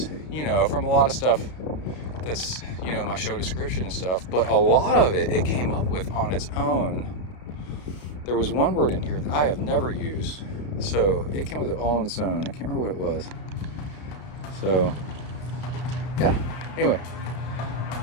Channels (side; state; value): right; late; 33 ms